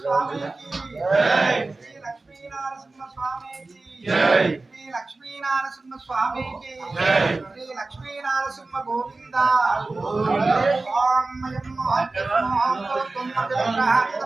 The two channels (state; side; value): quieter; left; 3.4 dB